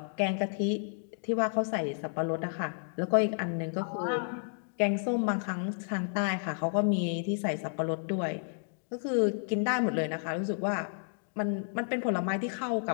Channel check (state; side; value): silent; right; digital silence